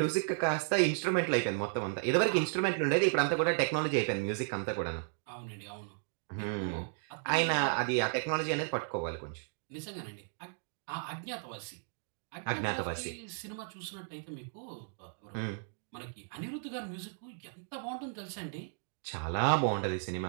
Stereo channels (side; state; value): left; silent; 55 dB below the other